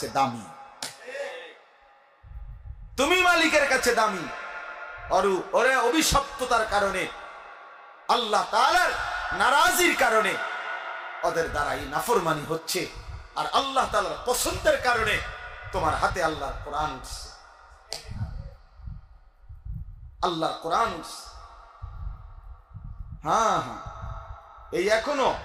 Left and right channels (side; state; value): both; identical; correlation 1.00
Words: দামি, তুমি মালিকের কাছে দামি। ওরে অভিশপ্ততার কারণে, আল্লাহ তাআলার নারাজির কারণে ওদের দ্বারা এই নাফরমানি হচ্ছে। আর আল্লাহ তাআলার পছন্দের কারণে তোমার হাতে আল্লাহর কোরআন উঠছে, আল্লাহর কোরআন উঠছে। হ্যাঁ হ্যাঁ, এই এখনো